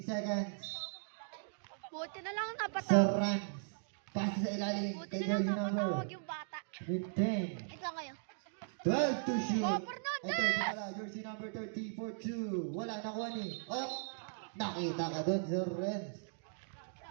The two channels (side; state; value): left; silent; digital silence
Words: seconds. Buti na lang napatawag. Sir Rans. Pass sa ilalim. Buti Kay na lang jersey number napatawag yung bata. 15. Ito ngayon. 12 to shoot. Oh, Fernandez! Ito, wala. Jersey number 30 for 2. Wala, nakuha ni. Oh, nakita ka doon, Sir Rans.